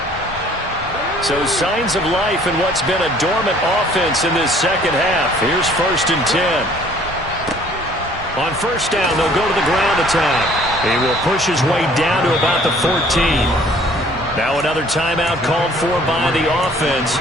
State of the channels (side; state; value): both; normal; correlation 0.56